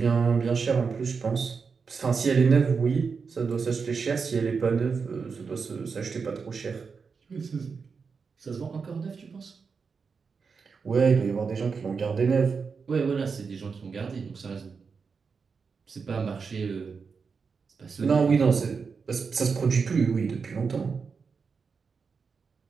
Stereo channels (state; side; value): quieter; left; 5.4 dB